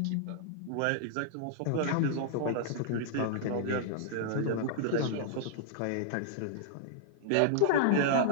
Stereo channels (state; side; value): different; both; correlation -0.01